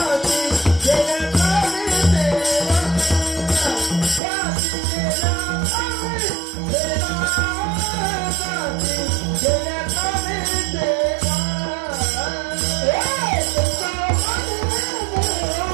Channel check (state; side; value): drops out; left; at 4.2 s